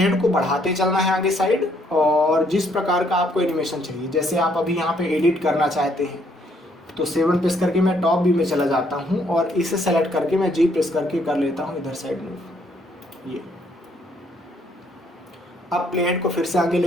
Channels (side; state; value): both; normal; correlation 0.68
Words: को बढ़ाते चलना है आगे साइड, और जिस प्रकार का आपको एनिमेशन चाहिए, जैसे आप अभी यहाँ पे एडिट करना चाहते हैं तो 7 प्रेस करके मैं टॉप व्यू में चला जाता हूँ और इसे सेलेक्ट करके मैं जी प्रेस करके कर लेता हूँ इधर साइड मूव। ये अब प्लेट को फिर से आगे